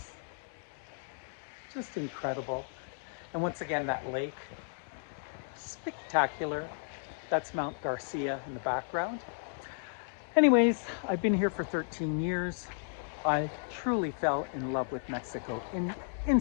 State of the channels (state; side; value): silent; right; digital silence